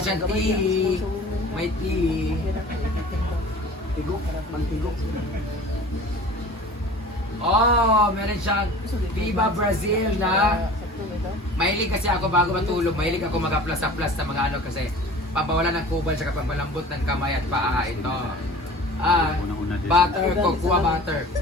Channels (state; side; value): normal; both; correlation 0.42